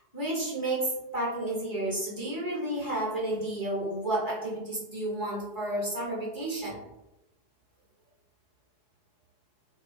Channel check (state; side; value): late; right; 4.7 ms